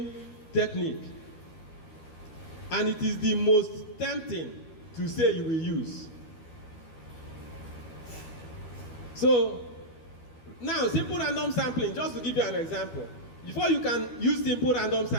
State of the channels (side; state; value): right; late; 12 ms